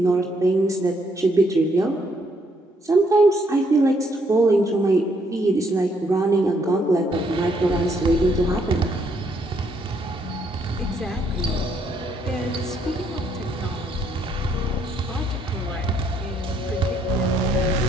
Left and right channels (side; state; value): both; normal; correlation 0.71